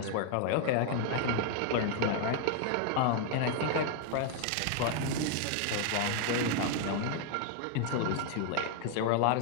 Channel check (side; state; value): both; different; correlation 0.00